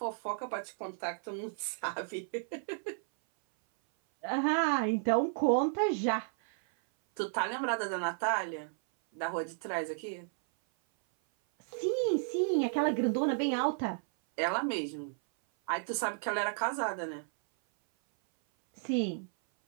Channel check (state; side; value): silent; left; 56 dB below the other